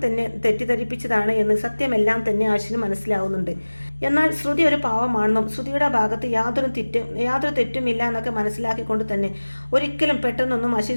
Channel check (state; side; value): inverted; both; correlation -1.00